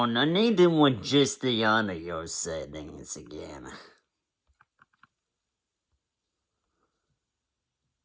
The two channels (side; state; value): both; identical; correlation 1.00